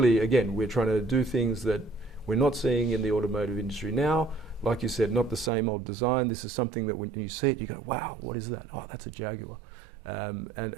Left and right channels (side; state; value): left; drops out; at 5.5 s